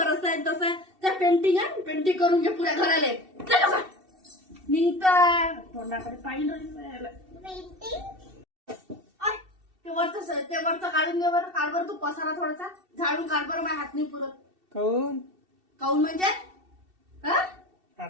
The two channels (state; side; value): late; left; 2.7 ms